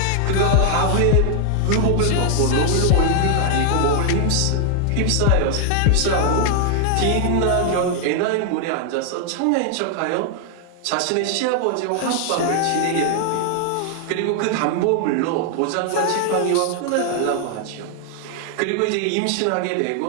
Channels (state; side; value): different; both; correlation 0.00